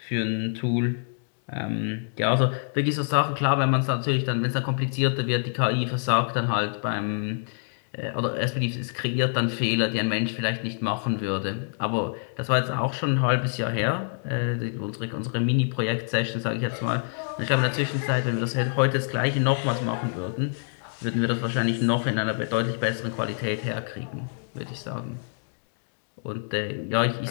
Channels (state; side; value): silent; right; digital silence